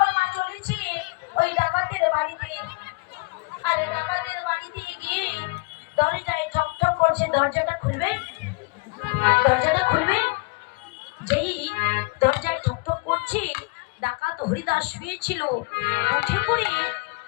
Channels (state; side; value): quieter; right; 27.9 dB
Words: চলেছে ওই ডাকাতের বাড়িতে। আর ডাকাতের বাড়িতে গিয়ে দরজায় ঠকঠক করছে, দরজাটা খুলবে, দরজাটা খুলবে। যেই দরজায় ঠকঠক করছে, ডাকাত হরিদাস শুয়েছিল, উঠে পড়ে